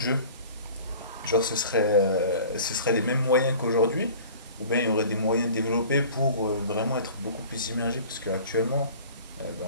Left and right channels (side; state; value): both; inverted; correlation -0.45